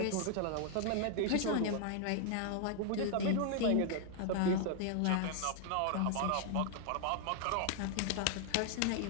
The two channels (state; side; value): different; both; correlation 0.00